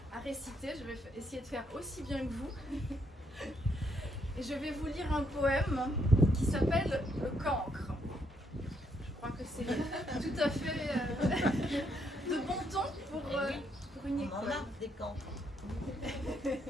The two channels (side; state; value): both; normal; correlation 0.74